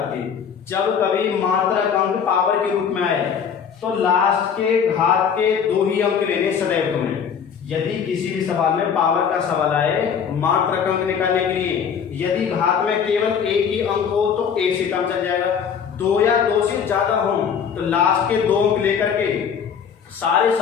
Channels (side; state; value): right; quieter; 7.2 dB